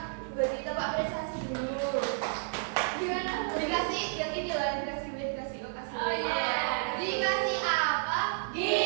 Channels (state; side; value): silent; left; digital silence